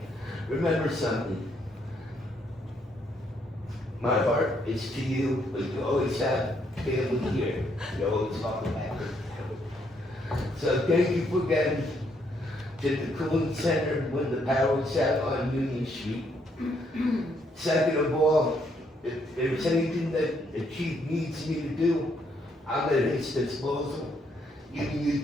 remember something. My heart is to you, but you always have family here. You always talk about it. So thank you for getting to the cooling center when the power was out on Union Street. Second of all, if there's anything that the chief needs me to do, I'm at his disposal. Even you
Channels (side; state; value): both; normal; correlation 0.73